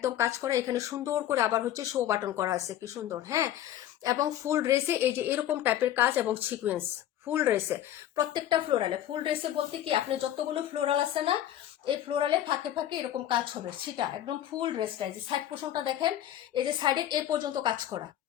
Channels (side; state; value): right; quieter; 11.9 dB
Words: কাজ করা, এখানে সুন্দর করে আবার হচ্ছে শো বাটন করা আছে, কি সুন্দর। হ্যাঁ, এবং ফুল ড্রেসে এই যে এরকম টাইপের কাজ এবং সিকোয়েন্স, ফুল ড্রেসে প্রত্যেকটা ফ্লোরালে, ফুল ড্রেসে বলতে কি, আপনি যতগুলো ফ্লোরাল আছে না, এই ফ্লোরালে ফাঁকে ফাঁকে এরকম কাজ হবে, সেটা একদম ফুল ড্রেসটা। এই যে সাইড পোর্শনটা দেখেন, এই যে সাইডে এ পর্যন্ত কাজ করা,